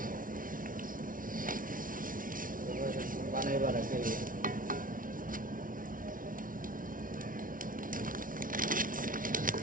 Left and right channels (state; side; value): late; left; 0.39 ms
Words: বানাই বাড়া খেয়ে